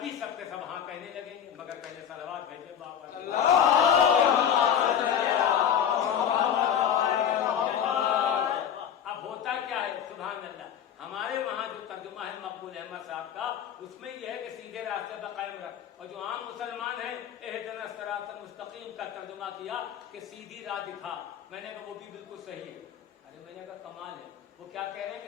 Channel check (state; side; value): quieter; right; 8.8 dB